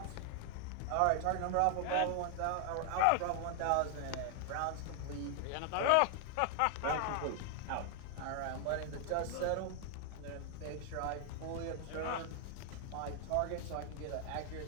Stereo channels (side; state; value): both; different; correlation 0.00